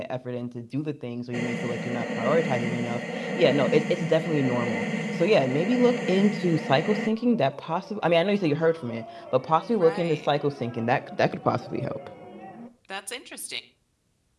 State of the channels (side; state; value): both; identical; correlation 1.00